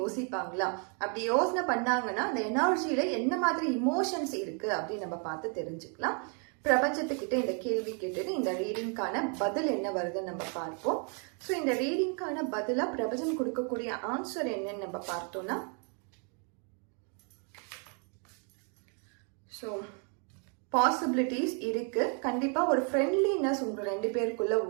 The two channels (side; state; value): left; quieter; 40.0 dB